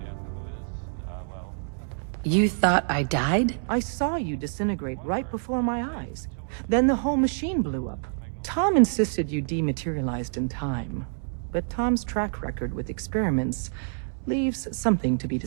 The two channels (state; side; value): silent; left; digital silence